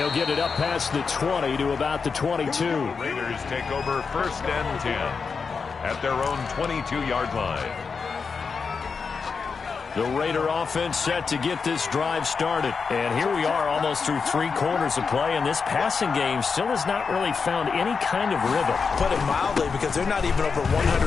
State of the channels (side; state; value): right; quieter; 5.3 dB